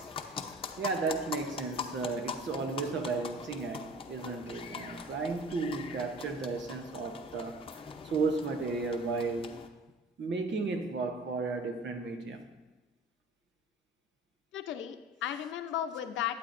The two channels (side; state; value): both; normal; correlation 0.43